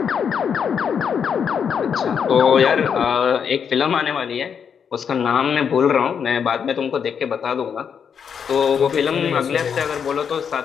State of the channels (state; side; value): quieter; right; 7.2 dB